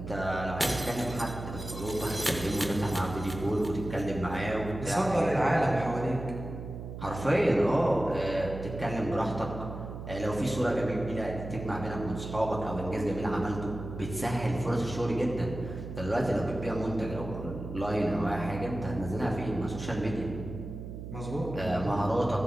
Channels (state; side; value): noise; right; hum, 9 dB below the sound